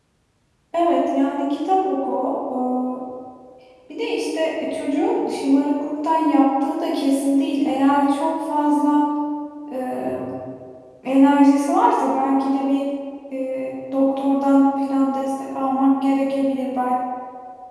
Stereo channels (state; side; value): identical; both; correlation 1.00